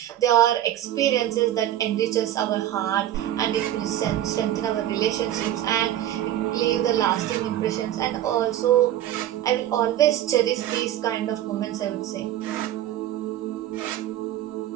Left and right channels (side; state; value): left; quieter; 12.4 dB